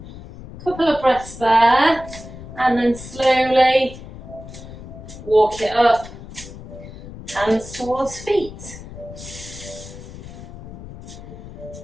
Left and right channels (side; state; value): left; noise; rumble, 14 dB below the sound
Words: Couple of breaths there. And then slowly walk it up, hands towards feet.